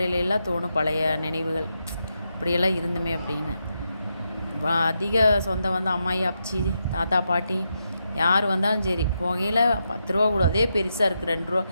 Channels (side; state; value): both; inverted; correlation -0.84